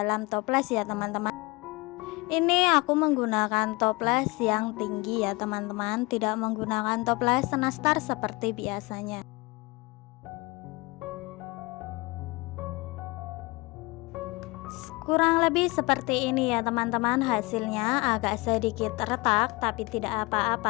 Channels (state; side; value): quieter; right; 24.6 dB